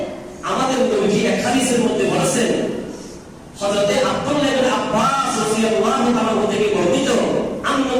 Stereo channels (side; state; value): both; identical; correlation 1.00